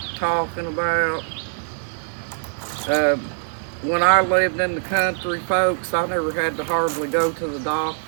talking about. Uh, when I lived in the country, folks, I never had to hardly go to the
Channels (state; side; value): silent; left; digital silence